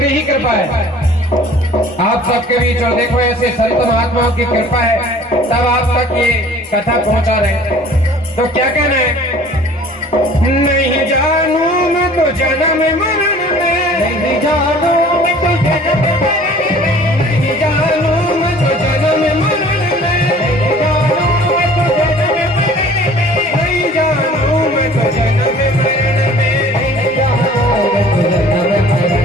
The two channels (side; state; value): both; normal; correlation 0.50